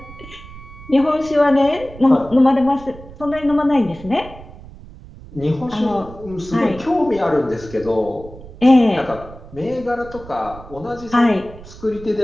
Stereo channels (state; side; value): noise; right; rumble, 17 dB below the sound